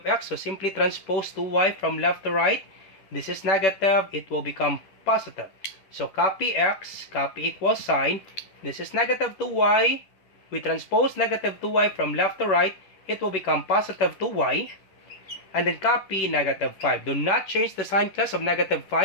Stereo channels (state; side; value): late; right; 10 ms